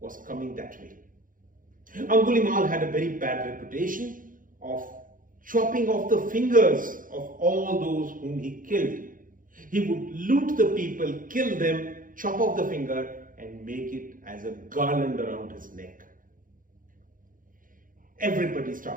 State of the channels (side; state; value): left; late; 0.40 ms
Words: coming that way. Angulimal had a very bad reputation of chopping off the fingers of all those whom he killed. He would loot the people, kill them, chop off the finger and make it as a garland around his neck. Everybody